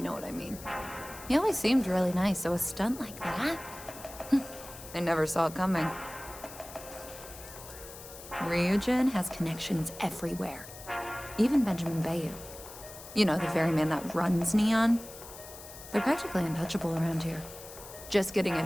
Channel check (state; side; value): noise; left; hiss, 15 dB below the sound